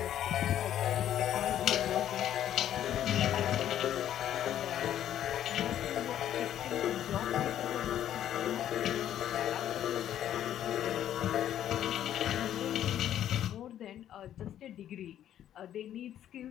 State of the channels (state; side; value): quieter; right; 11.0 dB